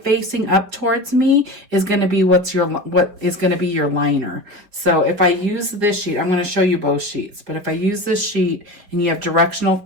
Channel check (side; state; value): left; late; 5.3 ms